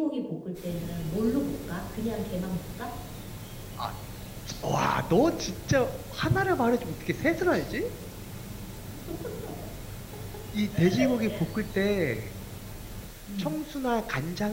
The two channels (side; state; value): both; identical; correlation 1.00